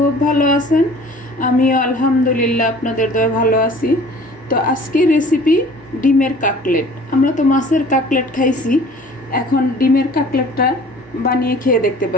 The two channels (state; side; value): normal; both; correlation 0.48